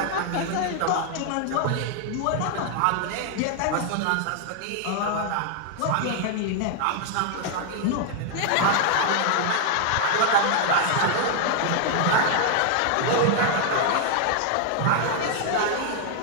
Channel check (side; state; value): both; different; correlation 0.00